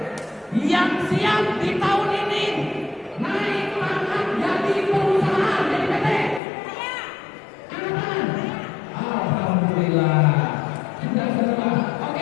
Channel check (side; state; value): right; drops out; at 6.4 s